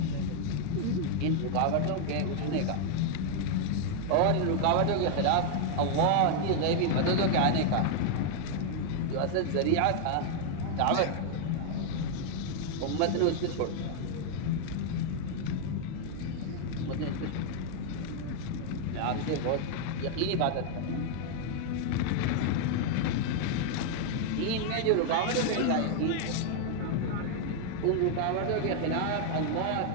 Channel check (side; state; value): both; different; correlation 0.00